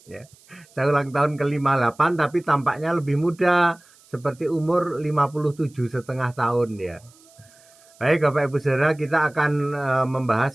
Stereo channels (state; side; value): noise; right; hiss, 28 dB below the sound